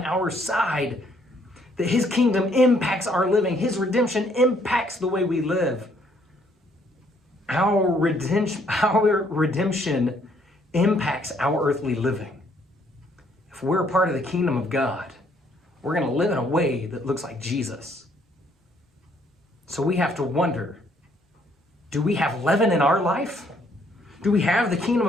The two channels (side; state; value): both; normal; correlation 0.66